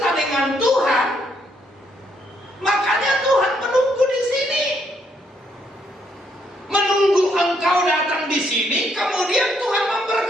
dengan Tuhan, makanya Tuhan menunggu di sini. Menunggu engkau datang di sini, kemudian Tuhan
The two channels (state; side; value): normal; both; correlation 0.73